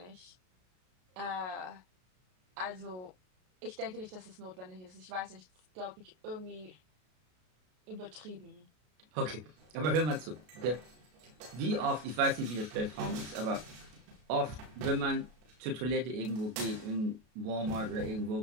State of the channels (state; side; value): late; left; 33 ms